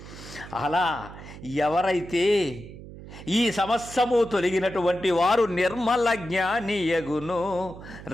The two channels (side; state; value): right; noise; hum, 15 dB below the sound